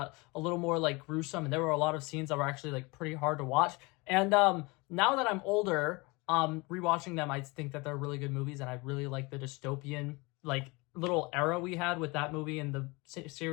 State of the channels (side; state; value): right; quieter; 25.7 dB